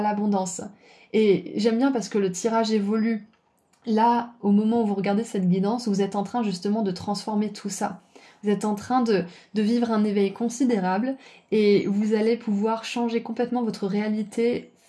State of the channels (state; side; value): identical; both; correlation 1.00